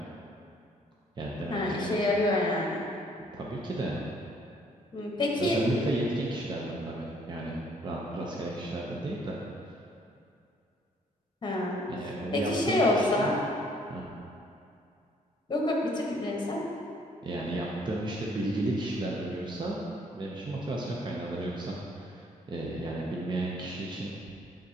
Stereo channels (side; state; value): both; normal; correlation 0.63